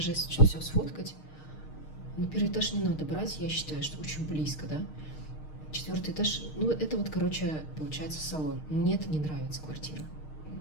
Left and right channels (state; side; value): late; right; 6.5 ms